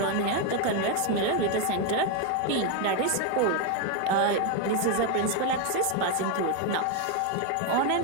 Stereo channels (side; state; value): both; different; correlation 0.01